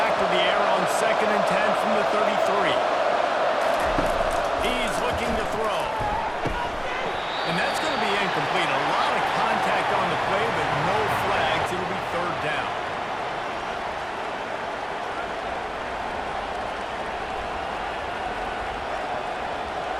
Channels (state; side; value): identical; both; correlation 1.00